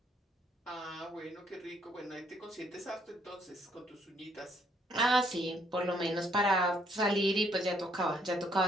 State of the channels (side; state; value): both; normal; correlation 0.68